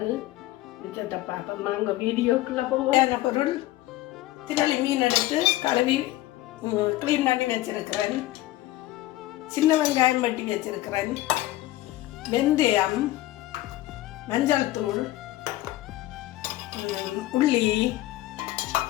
மிச்சத்தை பார்ப்போம். வாங்க வீடியோக்குள்ளே போவான பொருள்: திரளி மீன் எடுத்து கழுவி க்ளீன் பண்ணி வச்சிருக்கிறேன். சின்ன வெங்காயம் வெட்டி வச்சிருக்கிறேன். வெந்தயம், மஞ்சள் தூள், உள்ளி,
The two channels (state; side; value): quieter; right; 16.5 dB